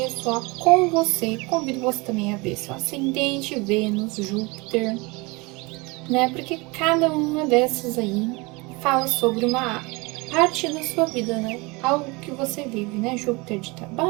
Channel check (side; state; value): left; quieter; 25.9 dB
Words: com você. Convido você também a ver seu ascendente, Vênus, Júpiter, né? Porque cada uma dessas aí fala sobre uma parte da sua vida, né? Algo que você vive, né? Júpiter de